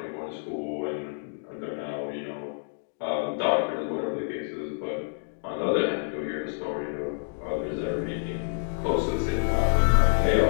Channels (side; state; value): right; silent; digital silence